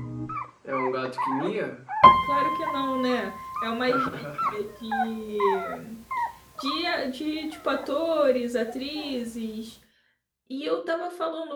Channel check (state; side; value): identical; both; correlation 1.00